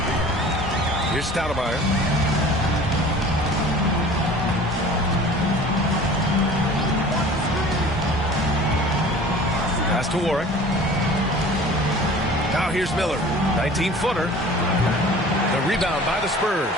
Here's Stoudemire. Pass to Warwick. Now here's Miller. 19-footer. The rebound by the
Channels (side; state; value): both; normal; correlation 0.44